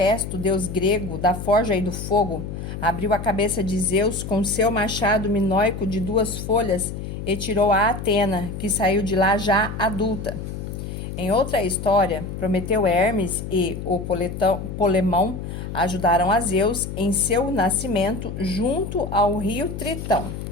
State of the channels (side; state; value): left; noise; hum, 7 dB below the sound